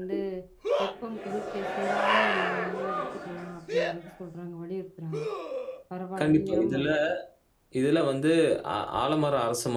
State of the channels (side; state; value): both; identical; correlation 1.00